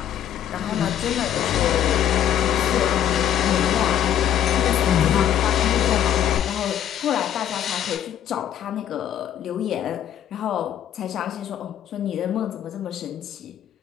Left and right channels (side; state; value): right; quieter; 10.2 dB